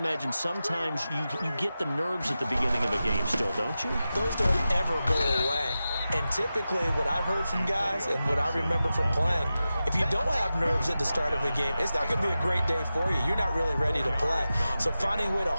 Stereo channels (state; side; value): inverted; both; correlation -0.93